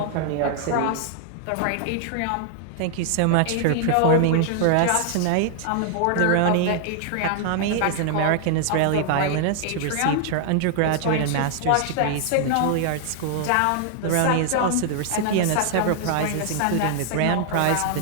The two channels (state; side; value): different; both; correlation 0.00